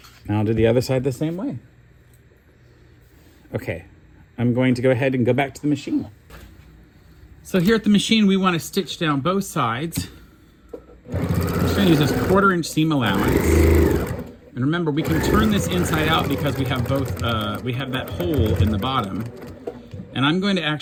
And I'll do the other side the same way. Okay, I'm going to go ahead and go back to the machine. So here at the machine, we want to stitch down both sides. I'm just going to use this 1/4 inch seam allowance. And remember, we can turn this inside out because we have both, we have that hole in the bottom. And I'm going to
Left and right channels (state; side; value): identical; both; correlation 1.00